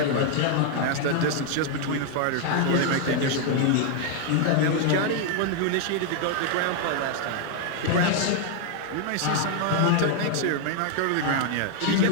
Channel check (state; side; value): different; both; correlation 0.00